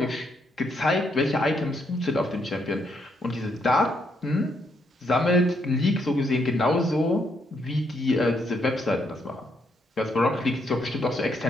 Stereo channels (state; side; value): normal; both; correlation 0.75